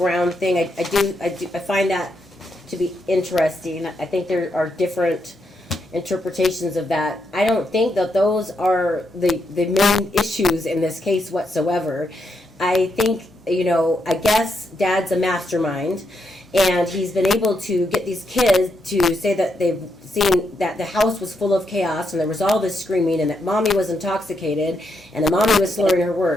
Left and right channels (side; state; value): both; normal; correlation 0.81